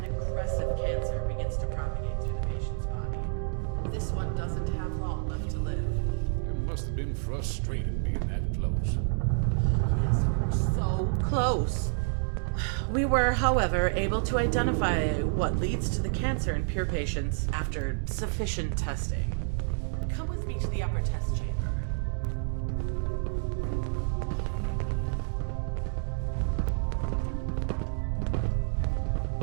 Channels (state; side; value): silent; left; 58 dB below the other